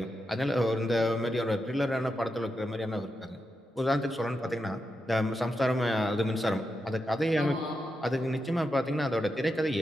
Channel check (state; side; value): normal; both; correlation 0.87